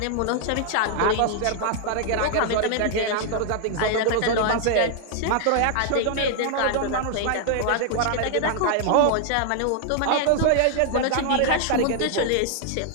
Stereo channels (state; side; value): different; both; correlation 0.00